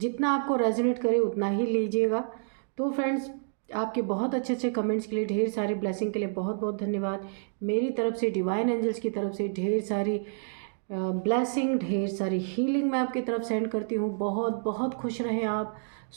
आपको रेजोनेट करे उतना ही लीजिएगा। तो फ्रेंड्स, आपके बहुत अच्छे अच्छे कमेंट्स के लिए, ढेर सारी ब्लेसिंग के लिए बहुत बहुत धन्यवाद। मेरी तरफ से, डिवाइन एंजल्स की तरफ से ढेर सारी ब्लेसिंग, ढेर सारी हीलिंग मैं आपकी तरफ सेंड करती हूँ। बहुत बहुत खुश रहें आप,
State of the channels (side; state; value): left; silent; digital silence